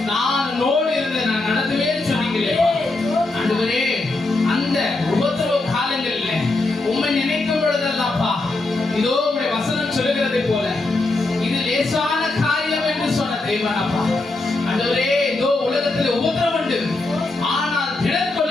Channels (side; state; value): right; quieter; 3.1 dB